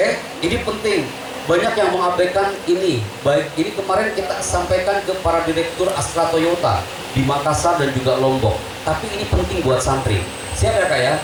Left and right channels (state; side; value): identical; both; correlation 1.00